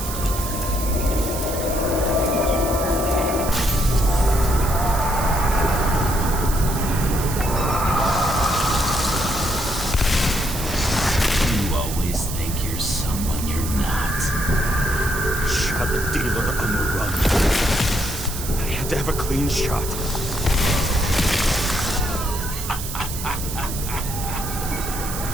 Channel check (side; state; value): right; noise; hiss, 8 dB below the sound